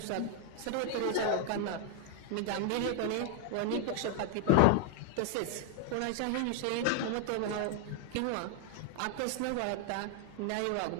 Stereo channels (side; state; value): both; different; correlation 0.00